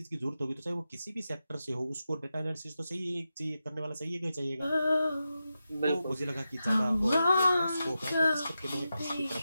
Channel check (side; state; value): both; inverted; correlation -0.90